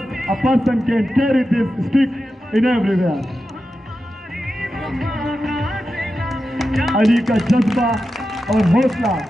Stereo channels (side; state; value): both; normal; correlation 0.91